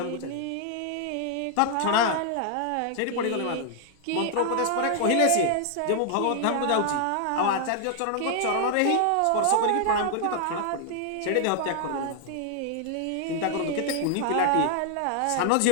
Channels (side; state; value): both; different; correlation 0.00